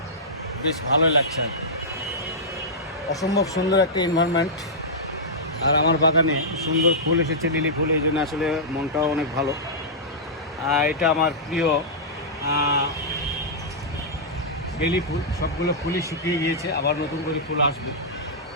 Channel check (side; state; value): both; normal; correlation -0.11